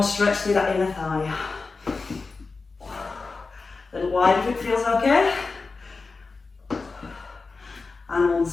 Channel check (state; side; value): quieter; right; 4.1 dB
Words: stretch through that inner thigh. A little wide if it feels okay. And